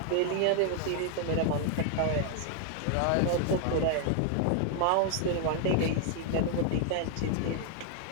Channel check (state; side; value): different; both; correlation 0.00